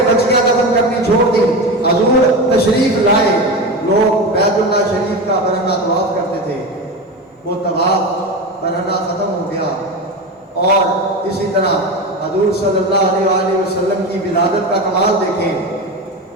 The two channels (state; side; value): normal; both; correlation 0.22